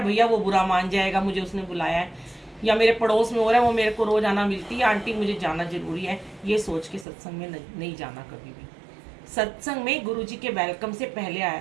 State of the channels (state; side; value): drops out; left; at 7.1 s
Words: भैया वो बुरा मान जाएगा मुझे उसने बुलाया है, या मेरे पड़ोस में हो रहा है, वो मेरे को रोज आना मिलती है, आंटी मुझे जाना जरूरी है, ये सोच के सत्संग में नहीं जाना कभी भी। सत्संग में गुरुजी के वेलकम से पहले आया